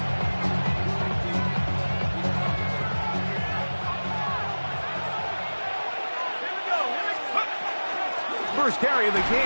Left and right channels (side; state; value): both; inverted; correlation -1.00